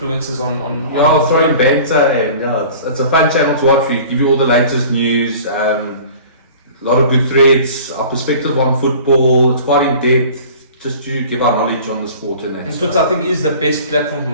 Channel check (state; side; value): inverted; both; correlation -0.44